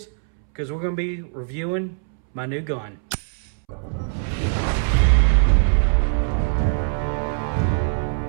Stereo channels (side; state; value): left; silent; 64 dB below the other